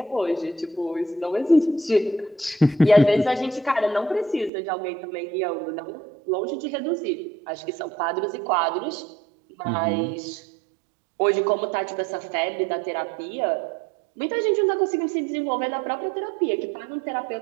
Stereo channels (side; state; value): left; drops out; at 4.5 s